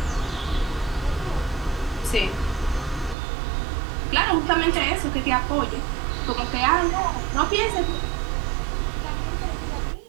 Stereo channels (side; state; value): left; drops out; at 3.2 s